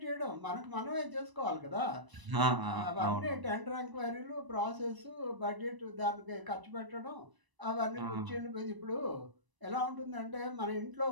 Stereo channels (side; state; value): left; late; 1.0 ms